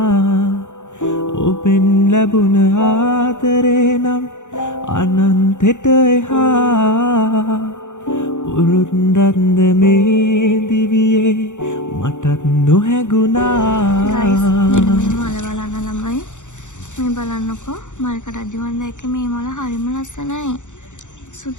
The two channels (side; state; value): right; late; 0.85 ms